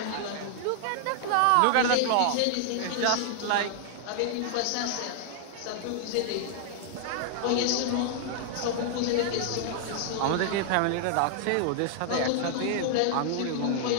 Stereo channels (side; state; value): both; different; correlation -0.01